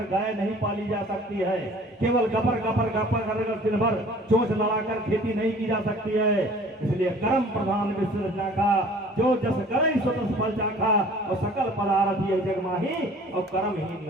गाय नहीं पाली जा सकती है, केवल गपर गपर गपर कर दिन भर चोंच लड़ाकर खेती नहीं की जा सकती है। इसलिए कर्म प्रधान विश्व रचा का, जो जस करई सो तस फल चाखा, और सकल पदार्थ ये जग माही, और कर्महीन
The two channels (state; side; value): normal; both; correlation 0.50